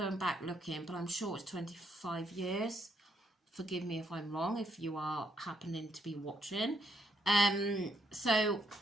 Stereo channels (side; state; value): both; normal; correlation 0.74